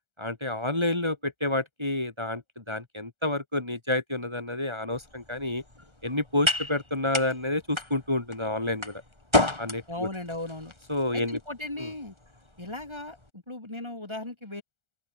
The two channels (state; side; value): late; left; 1.3 ms